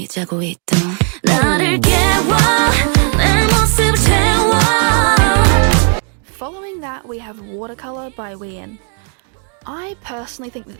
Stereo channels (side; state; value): left; quieter; 38.6 dB